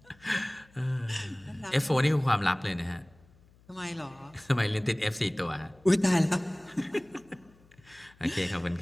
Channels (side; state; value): left; noise; hum, 28 dB below the sound